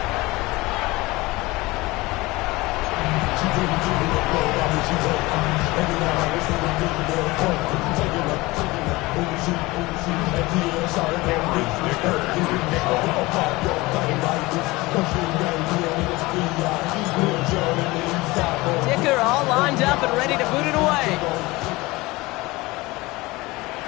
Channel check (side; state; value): right; quieter; 21.5 dB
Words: Dicker all lined up and ready to boot it away.